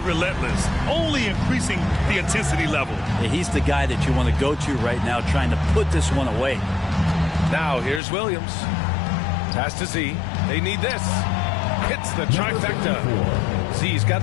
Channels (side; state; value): right; drops out; at 8.0 s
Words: only increasing the intensity level. Yeah, he's the guy that you want to go to right now, trying to put this one away. Now here's Williams. Pass to Z. They need this. Hits the trifecta. Z's got